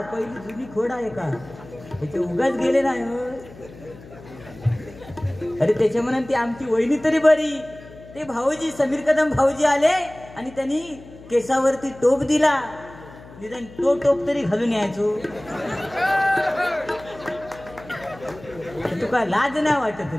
पहिली जुनी खोडा आहे का, त्याचे उगाच गेले नाही. अरे त्याच्या म्हणून ती आमची वहिनी तरी बरी, ते भाऊजी समीर कदम भाऊजी आले आणि त्यांनी केसावरती टोप दिला, निदान तो टोप तरी घालून यायचो. तुका लाज नाही वाटत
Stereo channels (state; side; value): noise; left; hum, 19 dB below the sound